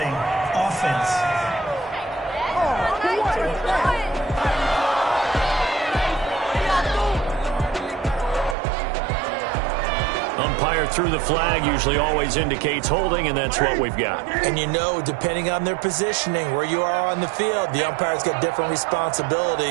Offense. Umpire through the flag usually always indicates holding, and that's what we've got. And you know, depending on their positioning, where you are on the field, the umpire's got different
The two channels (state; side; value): drops out; left; at 8.6 s